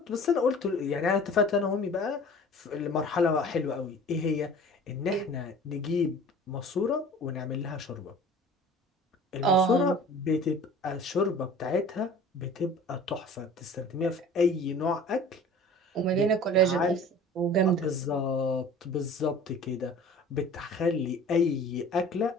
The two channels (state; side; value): normal; both; correlation 0.44